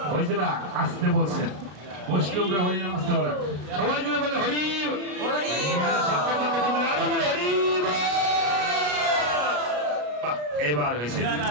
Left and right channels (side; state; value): left; late; 33 ms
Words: হয়েছে না? আসতে বলছেন, বৈষ্ণবরা হরি নাম আসতে বলেন, সবাই জুড়ে বলে হরি হরি। এবার হয়েছে,